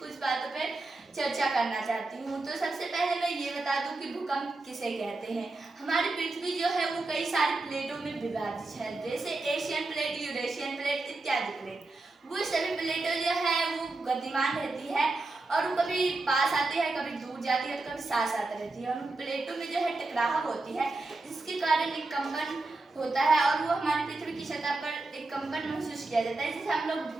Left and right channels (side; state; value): left; quieter; 3.2 dB